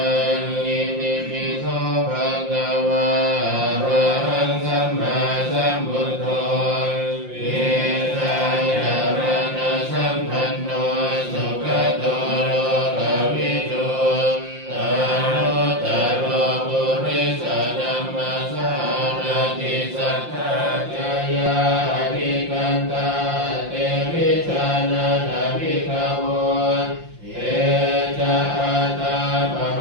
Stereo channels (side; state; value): left; late; 5.7 ms